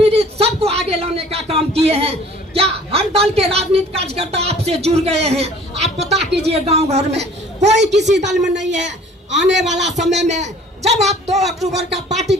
सबको आगे लाने का काम किए हैं। क्या हर दल के राजनीतिक कार्यकर्ता आपसे जुड़ गए हैं? आप पता कीजिए गांव घर में कोई किसी दल में नहीं है। आने वाला समय में जब आप 2 अक्टूबर का पार्टी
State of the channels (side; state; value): both; normal; correlation 0.51